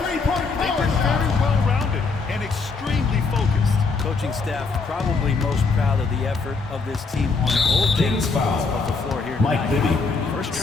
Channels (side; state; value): right; quieter; 4.4 dB